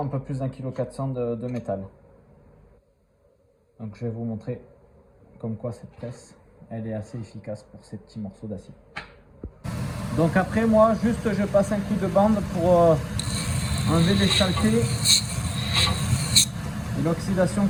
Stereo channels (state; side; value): identical; both; correlation 1.00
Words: peu plus d'1,4 kg de métal. Donc je vais vous montrer comme quoi cette presse, elle est assez efficace pour ces petits morceaux d'acier. Donc après moi, juste je passe un coup de bande pour enlever les saletés et l'oxydation